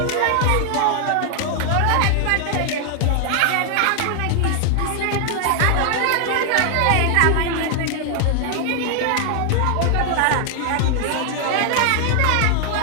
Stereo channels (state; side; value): different; both; correlation 0.00